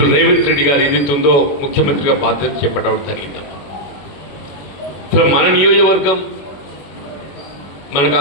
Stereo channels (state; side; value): late; right; 21 ms